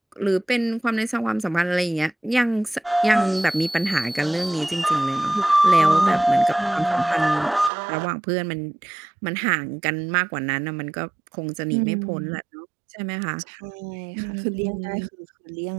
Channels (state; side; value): drops out; left; at 7.7 s